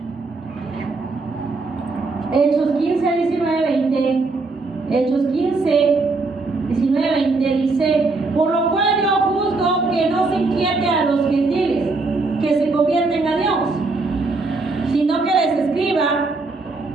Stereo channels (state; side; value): quieter; left; 3.6 dB